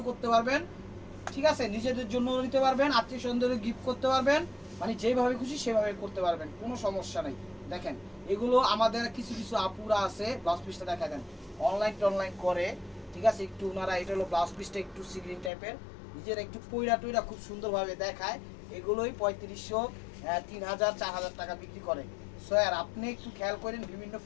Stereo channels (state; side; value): drops out; right; at 15.5 s